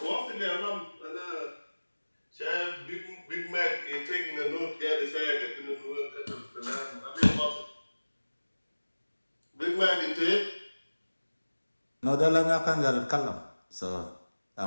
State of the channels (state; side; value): inverted; both; correlation -1.00